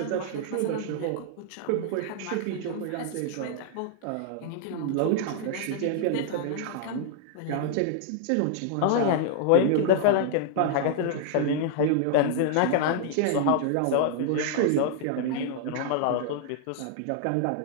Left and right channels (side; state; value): both; different; correlation -0.01